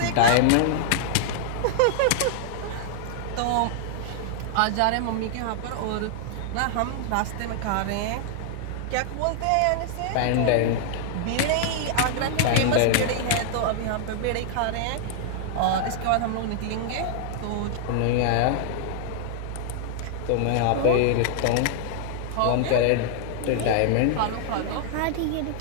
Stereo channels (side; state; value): both; different; correlation -0.01